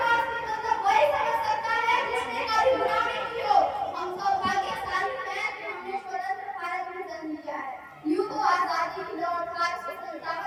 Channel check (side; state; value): both; identical; correlation 1.00